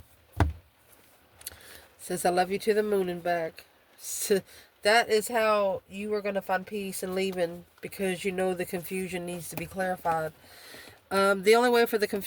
Says I love you to the moon and back. So that is how you are going to find peace and leaving, because you know the confusion needs to be clarified. The only way for the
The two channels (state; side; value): identical; both; correlation 1.00